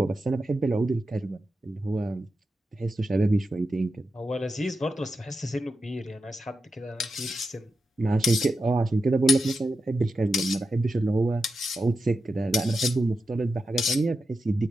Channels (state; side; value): normal; both; correlation 0.89